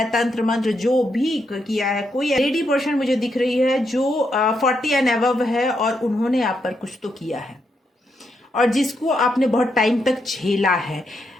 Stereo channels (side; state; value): both; normal; correlation 0.80